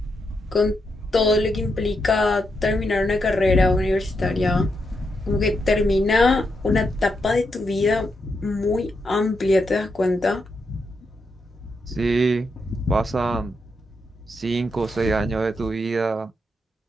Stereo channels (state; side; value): normal; both; correlation 0.82